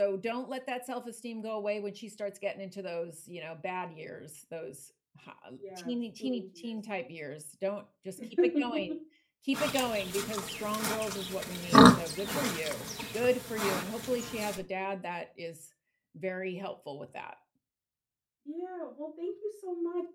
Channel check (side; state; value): both; identical; correlation 1.00